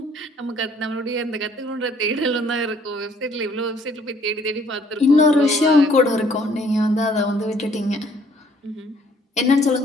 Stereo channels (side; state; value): both; normal; correlation 0.61